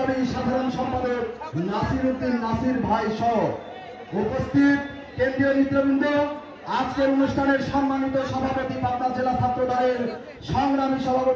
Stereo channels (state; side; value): identical; both; correlation 1.00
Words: সাধারণ সম্পাদক নাসিরউদ্দিন নাসির ভাই সহ উপস্থিত কেন্দ্রীয় নেতৃবৃন্দ, আজকের অনুষ্ঠানের সম্মানিত সভাপতি পাবনা জেলা ছাত্র দলের সংগ্রামী